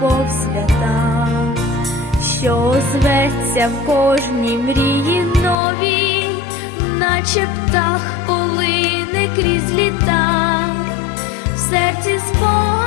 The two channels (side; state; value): right; drops out; at 5.6 s